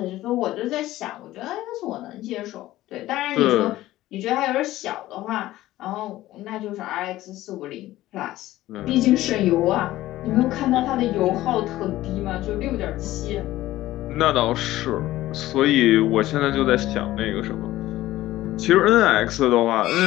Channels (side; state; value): right; quieter; 15.7 dB